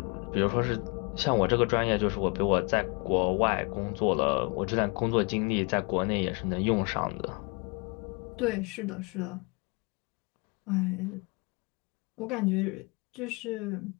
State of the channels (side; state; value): right; quieter; 30.3 dB